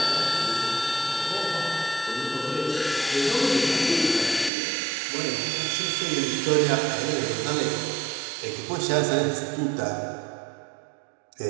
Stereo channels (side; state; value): left; drops out; at 4.5 s